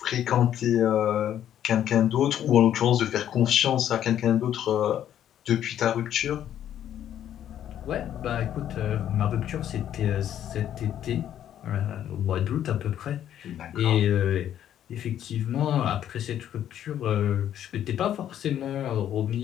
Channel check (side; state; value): right; quieter; 10.7 dB